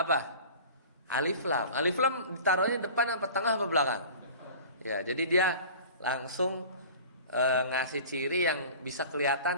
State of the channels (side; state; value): both; inverted; correlation -0.41